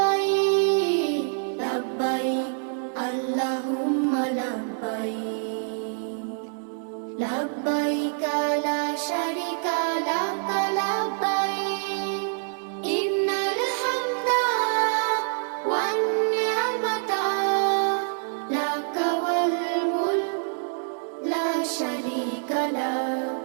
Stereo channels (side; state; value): left; silent; 61 dB below the other